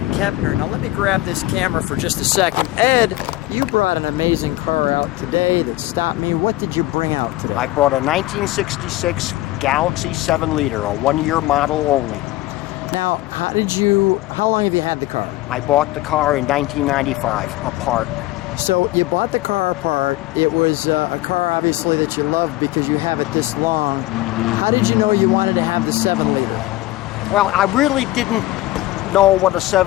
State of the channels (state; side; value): quieter; right; 17.3 dB